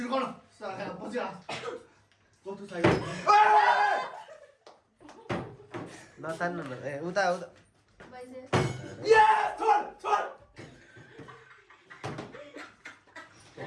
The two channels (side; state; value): both; identical; correlation 1.00